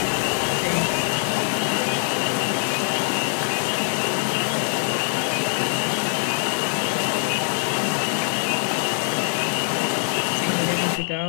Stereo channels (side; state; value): right; silent; 62 dB below the other